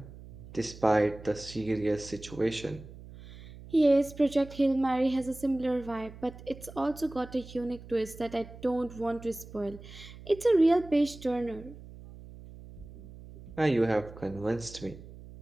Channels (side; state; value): right; noise; hum, 17 dB below the sound